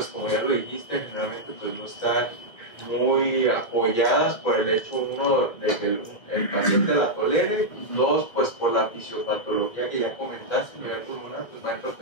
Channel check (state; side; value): late; right; 2.1 ms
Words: como ya lo dijiste, generalmente pues no están muy apoyadas por el hecho, uno, de que el paciente la tolere, dos, pues por la fisiopatología que ya comentaste, a nivel pulmonar, pues va a